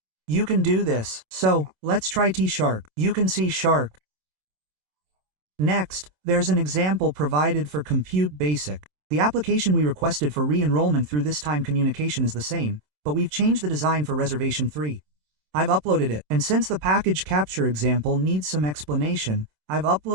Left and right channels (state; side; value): late; left; 27 ms